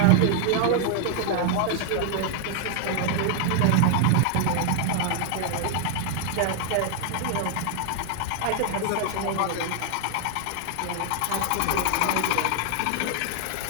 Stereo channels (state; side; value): different; both; correlation 0.00